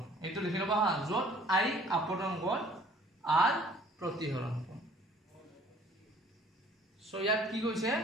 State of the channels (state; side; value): normal; both; correlation 0.54